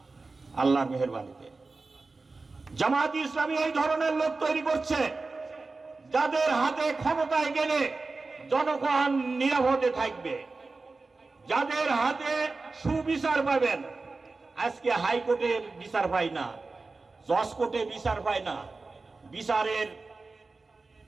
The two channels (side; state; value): left; quieter; 3.8 dB